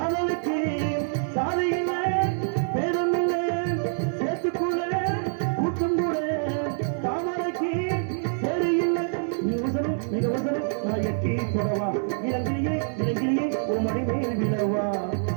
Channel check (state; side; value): silent; left; 61 dB below the other